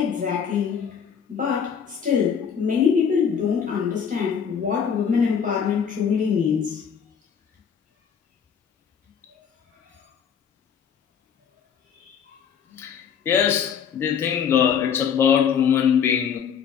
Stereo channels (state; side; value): quieter; right; 7.4 dB